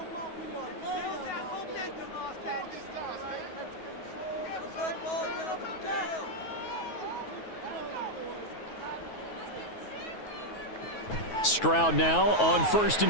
Stroud now on 1st and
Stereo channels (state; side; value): late; right; 9.3 ms